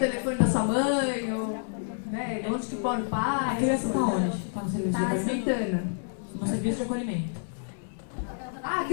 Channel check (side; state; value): right; silent; 59 dB below the other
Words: da sua mãe, ou né, onde que mora o pai? A criança está onde? Está no serviço de acolhimento? Santana. No serviço de acolhimento. A